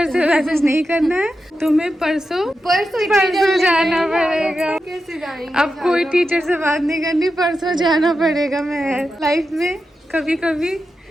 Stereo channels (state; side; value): normal; both; correlation 0.89